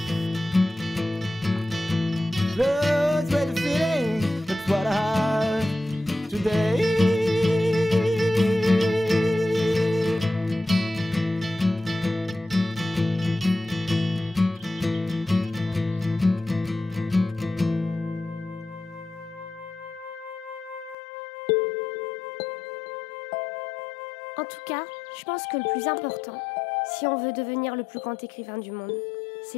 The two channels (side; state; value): right; drops out; at 21.0 s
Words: En tout cas, je pense que le plus important, si on veut devenir le plus grand écrivain du monde,